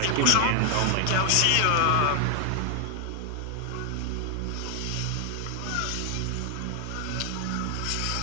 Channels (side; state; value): both; different; correlation 0.00